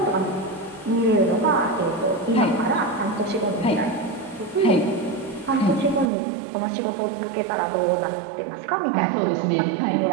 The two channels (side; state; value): left; drops out; at 6.1 s